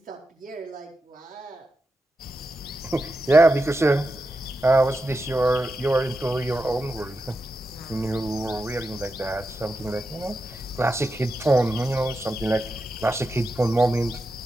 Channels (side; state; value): both; normal; correlation 0.89